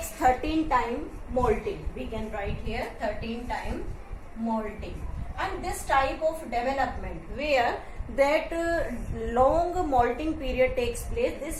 13 time molting. We can write here 13 time molting. And this type of development where that long molting period takes place,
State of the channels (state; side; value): identical; both; correlation 1.00